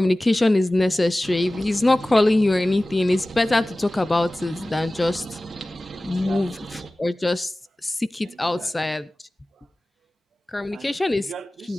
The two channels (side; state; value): both; normal; correlation 0.97